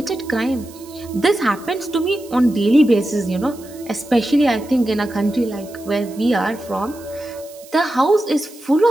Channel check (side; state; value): right; noise; hiss, 22 dB below the sound